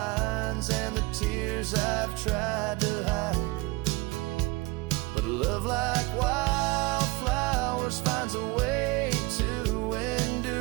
and the tears I've tried to hide. But love like wildflowers finds a way to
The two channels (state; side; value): quieter; left; 23.4 dB